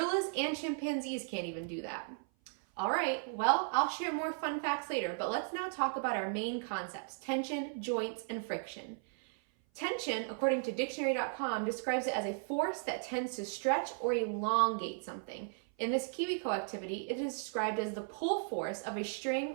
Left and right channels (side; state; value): left; silent; 54 dB below the other